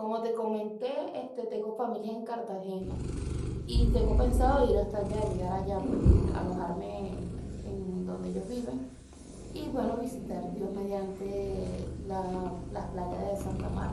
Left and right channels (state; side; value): identical; both; correlation 1.00